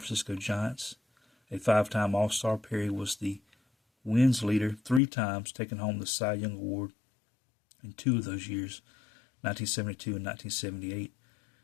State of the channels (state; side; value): drops out; right; at 5.0 s